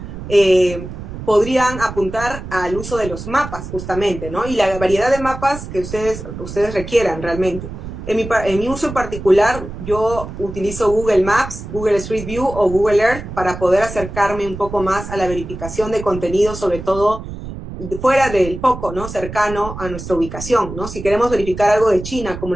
podrían apuntar al uso de los mapas justamente, ¿no? Y la variedad de mapas que ustedes requieran realmente. En mi uso en particular, yo utilizo Google Maps, Google Street View o Google Earth para poder acercarme un poco más a la verificación de contenido, sobre todo fuera del foco, ¿no? Cercano a nuestra ubicación, ¿no? Si queremos verificar algo de China, como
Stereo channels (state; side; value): noise; right; rumble, 10 dB below the sound